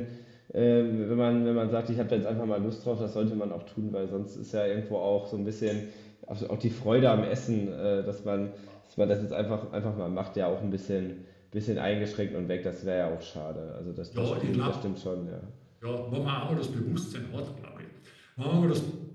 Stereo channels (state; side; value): identical; both; correlation 1.00